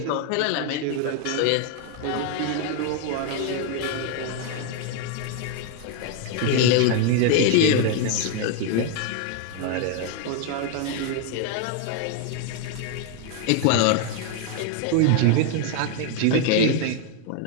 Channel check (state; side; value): different; both; correlation 0.00